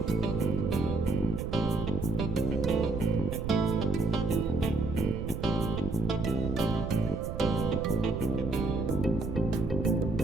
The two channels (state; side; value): noise; right; rumble, 5 dB below the sound